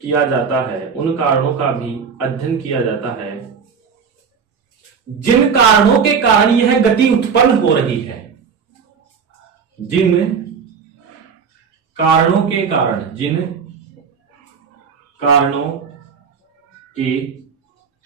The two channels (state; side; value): quieter; left; 6.2 dB